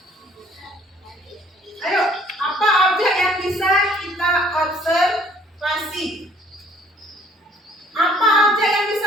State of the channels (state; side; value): normal; both; correlation 0.59